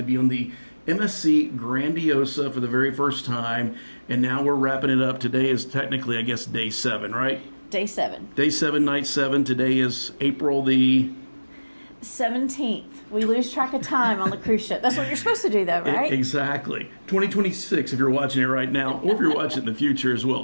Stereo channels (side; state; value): both; inverted; correlation -1.00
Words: be on the MSC Grandiosa for the very first time, and now we're wrapping it up. Today is technically, I guess, day 7, right? Day 7. Day 7, night 7. Today is April the 17th. We lose track of time on the cruise ship. That's what you're supposed to do, though, right? Exactly. 2026, if you're watching it right now, or if you're watching it in the future as